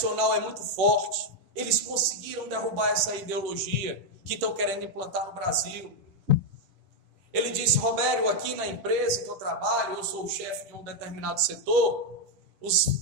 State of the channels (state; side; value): late; left; 10 ms